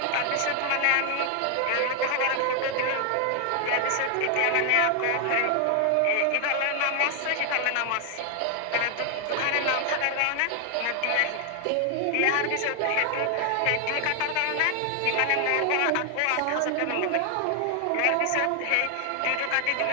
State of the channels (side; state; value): both; different; correlation 0.00